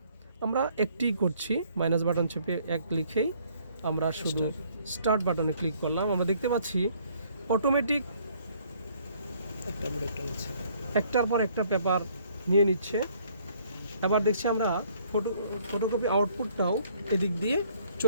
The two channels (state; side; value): inverted; both; correlation -0.62